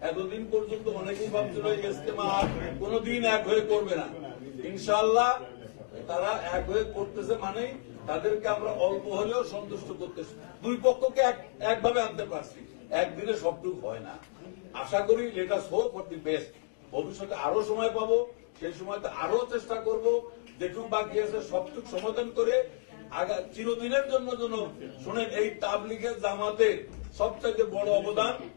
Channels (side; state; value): right; silent; digital silence